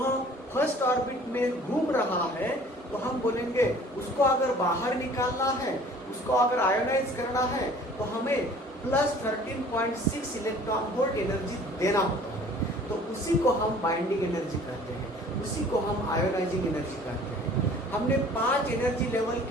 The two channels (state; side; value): normal; both; correlation 0.50